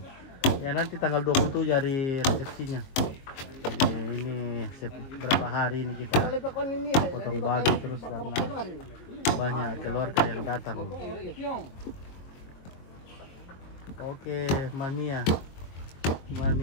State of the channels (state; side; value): late; right; 22 ms